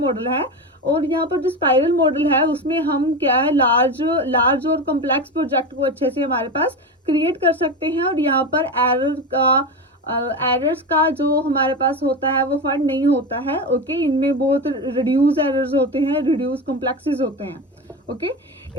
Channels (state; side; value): normal; both; correlation 0.21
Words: है। और यहाँ पर जो स्पाइरल मॉडल है उसमें हम क्या है लार्ज और कॉम्प्लेक्स प्रोजेक्ट को अच्छे से हमारे पास क्रिएट कर सकते हैं, और यहाँ पर एरर्स का जो हमारे पास होता है वो फाइंड नहीं होता है। ओके, इनमें बहुत रिड्यूस एरर्स होते हैं, रिड्यूस कॉम्प्लेक्सेस होते हैं। Okay,